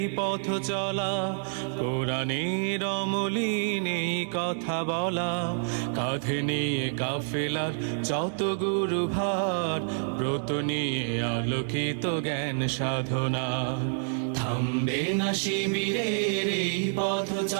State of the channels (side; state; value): left; silent; 59 dB below the other